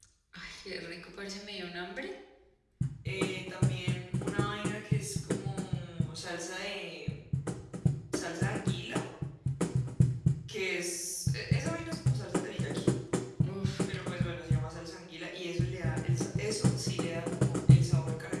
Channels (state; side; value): identical; both; correlation 1.00